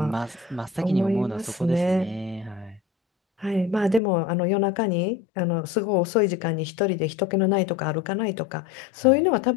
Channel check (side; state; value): right; drops out; at 4.0 s